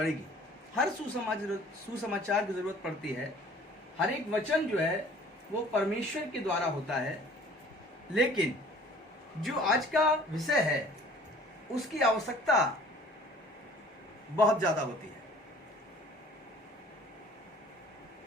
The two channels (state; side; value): normal; both; correlation 0.50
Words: हर सुसमाचार की जरूरत पड़ती है। हर एक वचन जो है वो परमेश्वर के द्वारा होता है, लेकिन जो आज का विषय है उसकी आवश्यकता बहुत ज्यादा होती है।